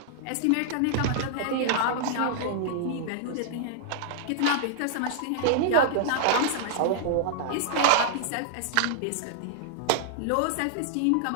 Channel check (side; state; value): both; different; correlation -0.01